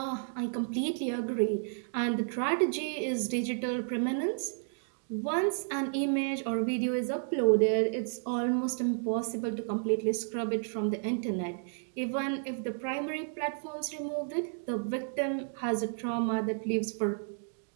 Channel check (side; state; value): left; silent; digital silence